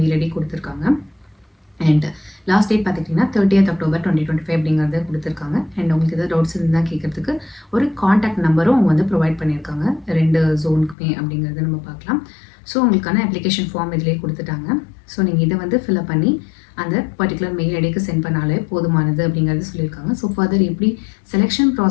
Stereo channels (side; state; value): right; drops out; at 11.0 s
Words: மெயில் ஐடி கொடுத்துருக்காங்க. அண்ட் லாஸ்ட் டேட் பார்த்துக்கிட்டிங்கன்னா 30th October 2025 அப்படிங்கிறத கொடுத்துருக்காங்க. அண்ட் உங்களுக்கு எதாவது டவுட்ஸ் இருந்தால் கேட்குறதுக்கு ஒரு காண்டாக்ட் நம்பரும் அவங்க வந்து ப்ரொவைட் பண்ணியிருக்காங்க 2 ஜோனுக்குமே அப்படிங்கிறத நம்ம பார்க்கலாம். ஸோ உங்களுக்கான அப்ளிகேஷன் ஃபார்ம் இதிலே கொடுத்துட்டாங்க. ஸோ நீங்கள் இதை வந்து ஃபில்அப் பண்ணி அந்த பர்டிகுலர் மெயில் ஐடிக்கு சென்ட் பண்ணாலே போதுமானது அப்படிங்கிறது சொல்லியிருக்காங்க. ஸோ ஃபர்தர் எப்படி செலெக்ஷன்